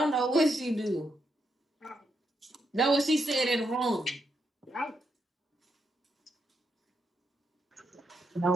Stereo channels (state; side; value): normal; both; correlation 0.81